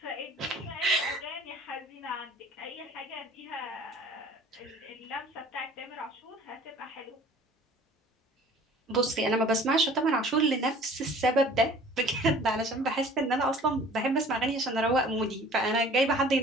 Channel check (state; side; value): normal; both; correlation 0.48